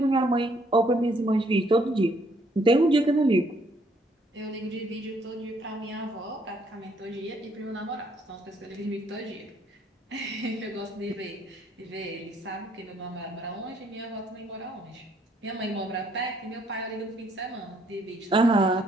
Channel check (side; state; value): both; normal; correlation 0.67